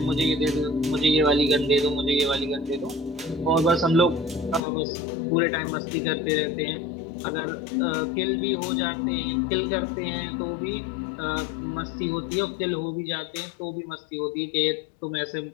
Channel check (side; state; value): right; drops out; at 4.6 s